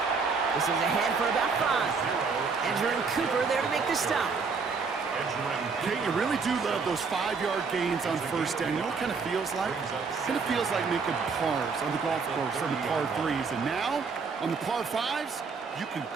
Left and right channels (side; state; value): left; quieter; 5.0 dB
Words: This is ahead for about 5. Edgerrin Cooper there to make the stop. Kate, you really do love those 5-yard gains on first down. You know what it kind of feels like? It kind of feels like making pars on the golf course on the par 3s. And now, on the par 5s, you can